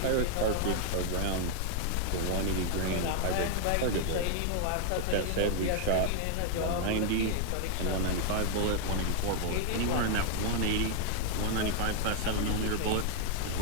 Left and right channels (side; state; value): both; different; correlation 0.00